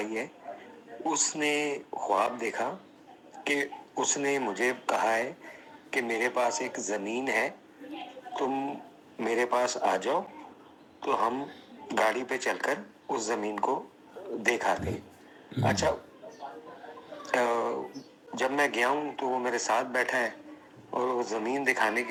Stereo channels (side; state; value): both; identical; correlation 1.00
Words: ہے، اس نے خواب دیکھا کہ اس نے مجھے کہا ہے کہ میرے پاس ایک زمین ہے، تم میرے پاس آ جاؤ تو ہم گاڑی پہ چل کر اس زمین کو دیکھ آتے ہیں۔ اچھا، جب میں گیا ہوں تو وہ میرے ساتھ بیٹھا ہے اور وہ زمین دکھانے